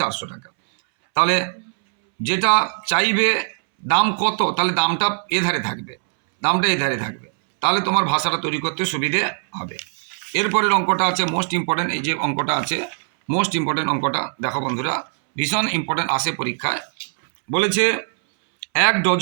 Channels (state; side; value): silent; left; 65 dB below the other